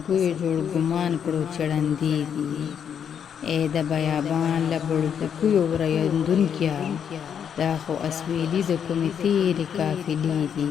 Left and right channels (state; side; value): quieter; right; 8.1 dB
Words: جوړ ګمان کړو چې ړندې دي ای د بیابان له بړکوکیو ورایندونکیه دا خو اسویلي د کومې تیرې قافلې دي